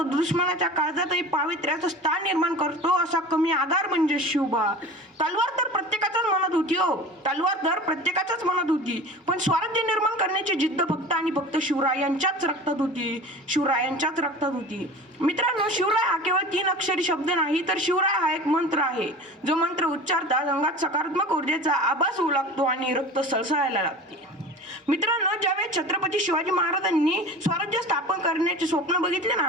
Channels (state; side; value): normal; both; correlation 0.37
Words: दुश्मनाच्या काळजातही पावित्र्याचं स्थान निर्माण करतो असा कमी आधार म्हणजे शिवबा. तलवार तर प्रत्येकाच्याच मनात होती हो, तलवार तर प्रत्येकाच्याच मनात होती. पण स्वराज्य निर्माण करण्याची जिद्द फक्त आणि फक्त शिवरायांच्याच रक्तात होती. शिवरायांच्याच रक्तात होती. मित्रांनो, शिवराय हा केवळ 3 अक्षरी शब्द नाही, तर शिवराय हा एक मंत्र आहे. जो मंत्र उच्चारतात अंगात सकारात्मक ऊर्जेचा आभास होऊ लागतो आणि रक्त सळसळायला लागते. मित्रांनो, ज्यावेळेस छत्रपती शिवाजी महाराजांनी स्वराज्य स्थापन करण्याचे स्वप्न बघितले